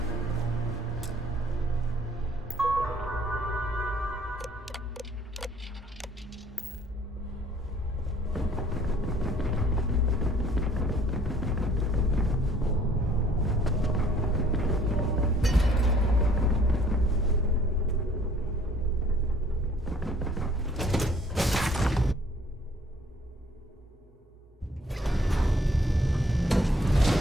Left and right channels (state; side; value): normal; both; correlation 0.59